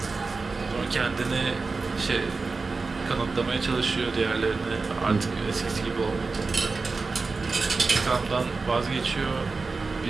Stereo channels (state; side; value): quieter; left; 4.1 dB